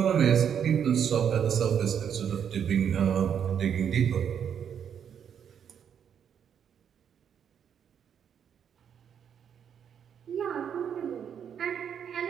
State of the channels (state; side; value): quieter; left; 8.2 dB